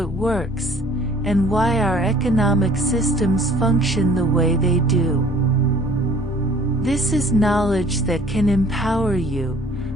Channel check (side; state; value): both; normal; correlation 0.53